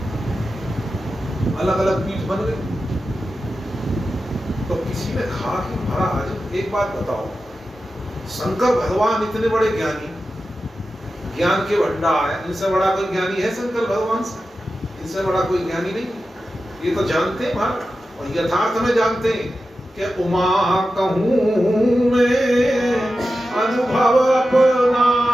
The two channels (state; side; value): normal; both; correlation 0.92